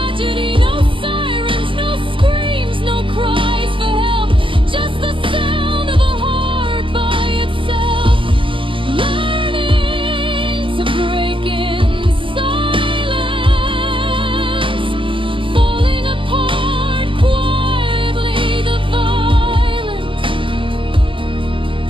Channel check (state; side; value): late; left; 0.25 ms